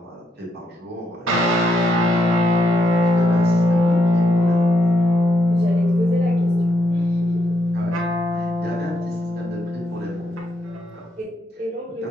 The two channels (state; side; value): normal; both; correlation 0.78